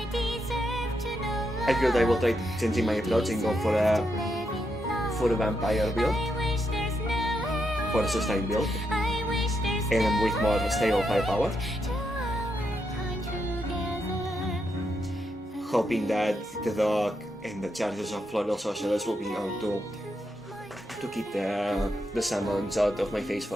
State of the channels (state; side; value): normal; both; correlation 0.82